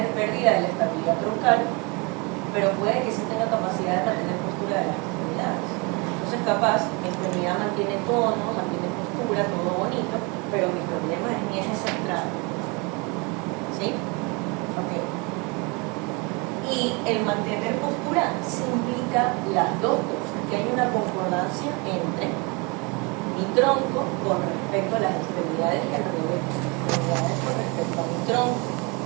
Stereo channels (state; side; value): quieter; left; 29.5 dB